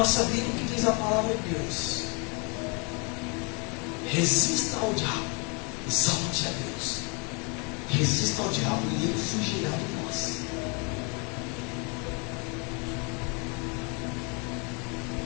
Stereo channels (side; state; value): right; quieter; 33.3 dB